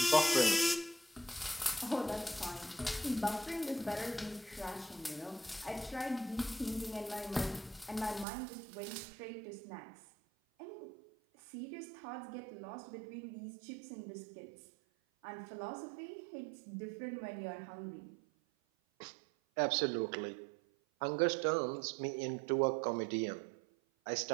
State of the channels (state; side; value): drops out; left; at 8.2 s